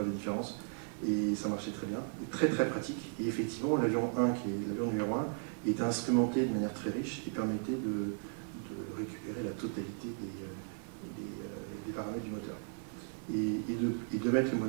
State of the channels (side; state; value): left; silent; 54 dB below the other